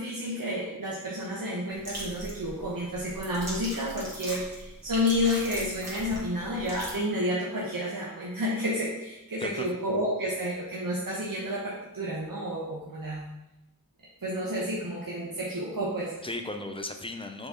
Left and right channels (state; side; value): normal; both; correlation 0.05